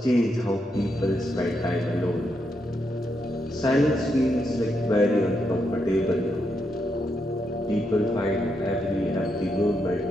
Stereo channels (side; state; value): both; normal; correlation 0.81